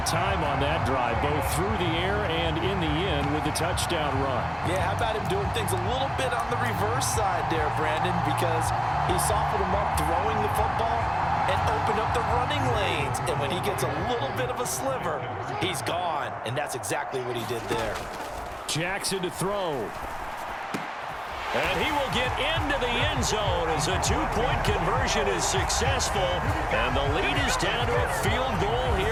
time on that drive, both through the air and in the end with the touchdown run. Yeah, how about him doing things a little bit on the reverse side there, Brandon, because he softened him up throwing the football and opened up the running lanes. And when he gets a little bit of a sliver, he's gone. And that's exactly what he did there. Jackson to throw. And he will get into the end zone as a two-point conversion is successful. And the lead is down to a field goal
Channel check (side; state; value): both; identical; correlation 1.00